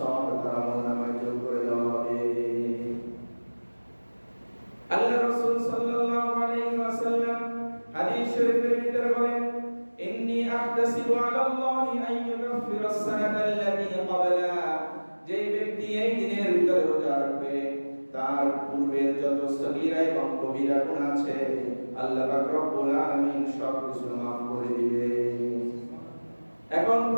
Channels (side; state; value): both; inverted; correlation -1.00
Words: তার আমলনামায় যোগ করে দেওয়া হবে। আল্লাহ রাসূল সাল্লাল্লাহু আলাইহি ওয়াসাল্লাম হাদিস শরীফের ভিতরে বলেন, ইন্নী আহতাসিবু আলাল্লাহি আন ইউকাফিরা আস-সানাতা আল্লাতী ক্বাবলা, যে ব্যক্তি এই দিনের ভিতরে রোজা রাখবে তার পূর্বের যত সগীরা এবং কবিরা গুনাহ আছে আল্লাহ পাক রব্বুল আলামিন সব কিছু মাফ করে দিবে। এখন